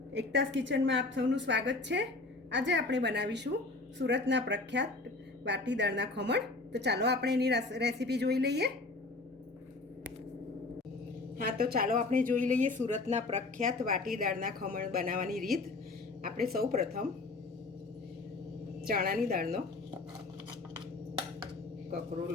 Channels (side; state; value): right; quieter; 3.4 dB